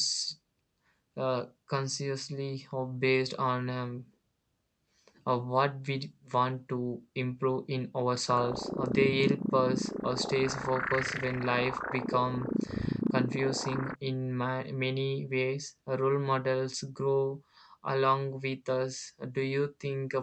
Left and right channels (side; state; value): both; identical; correlation 1.00